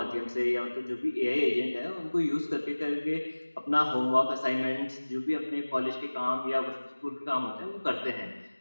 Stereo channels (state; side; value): inverted; both; correlation -1.00